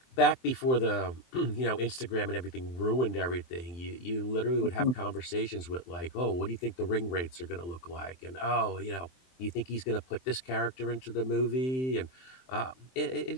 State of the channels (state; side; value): late; right; 23 ms